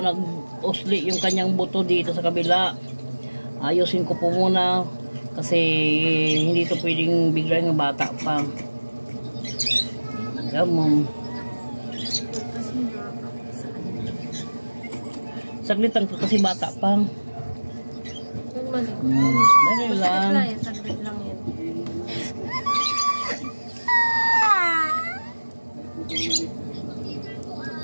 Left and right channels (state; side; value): inverted; both; correlation -1.00